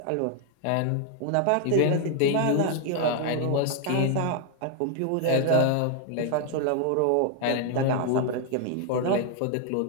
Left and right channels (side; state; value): both; different; correlation 0.00